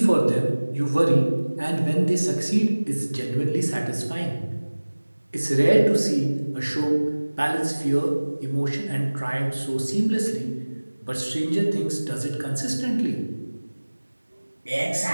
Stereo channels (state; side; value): inverted; both; correlation -1.00